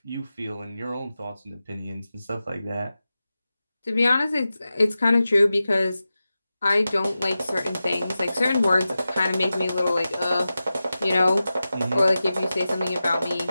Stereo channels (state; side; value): inverted; both; correlation -0.94